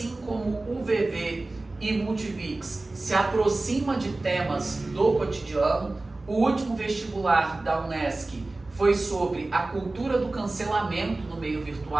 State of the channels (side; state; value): left; quieter; 3.1 dB